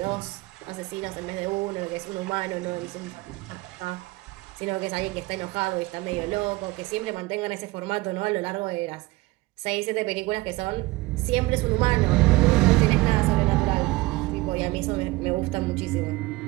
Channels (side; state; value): left; quieter; 20.9 dB